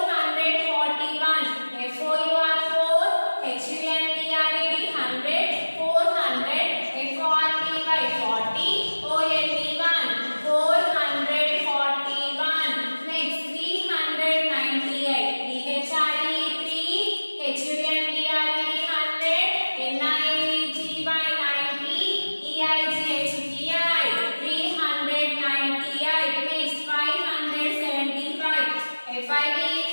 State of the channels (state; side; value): inverted; both; correlation -1.00